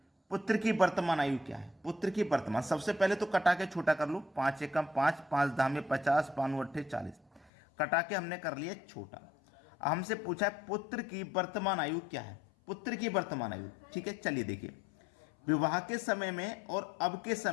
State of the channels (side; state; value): right; drops out; at 7.5 s